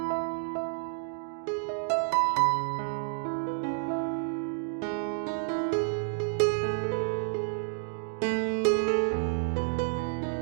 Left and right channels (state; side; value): silent; left; digital silence